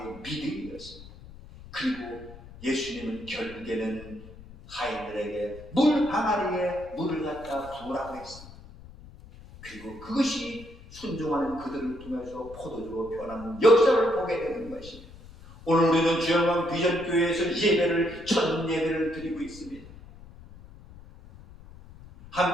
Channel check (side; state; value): left; noise; rumble, 18 dB below the sound